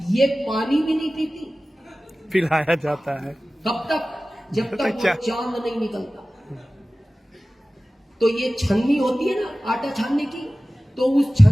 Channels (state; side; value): normal; both; correlation 0.97